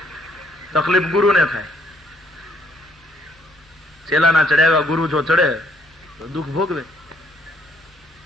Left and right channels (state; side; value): normal; both; correlation 0.67